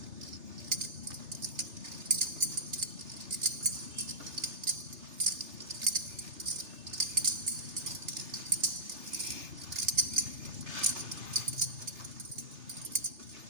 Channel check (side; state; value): left; late; 3.3 ms